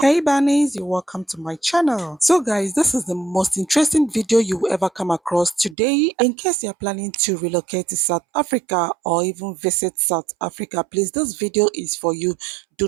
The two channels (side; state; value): left; drops out; at 5.8 s